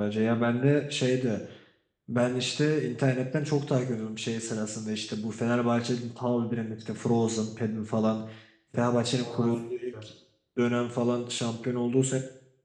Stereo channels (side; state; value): both; identical; correlation 1.00